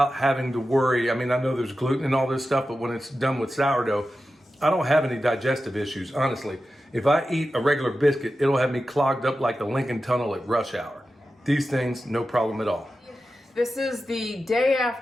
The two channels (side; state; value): both; normal; correlation 0.92